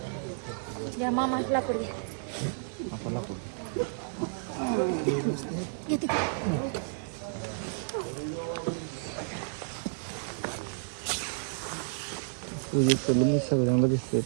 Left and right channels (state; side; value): silent; left; 57 dB below the other